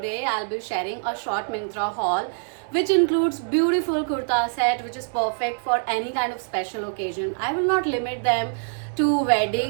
I'll be sharing a short Myntra haul which includes beautiful kurta set which is perfect for any kind of special occasion. I will not limit them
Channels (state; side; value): silent; left; digital silence